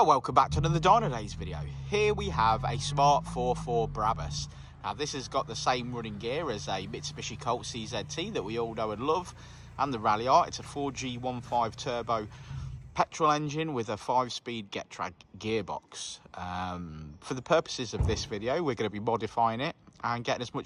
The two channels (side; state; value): both; identical; correlation 1.00